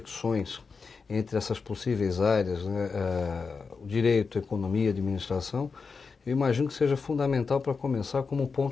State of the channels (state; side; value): quieter; right; 5.0 dB